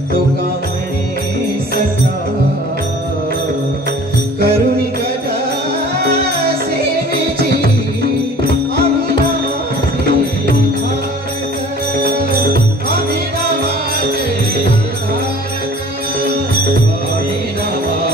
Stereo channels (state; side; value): normal; both; correlation 0.47